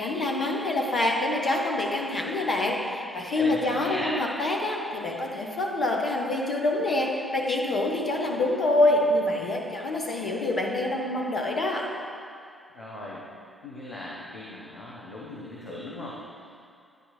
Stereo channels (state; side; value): normal; both; correlation 0.64